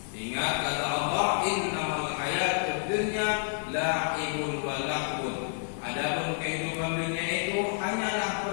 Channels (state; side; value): silent; right; digital silence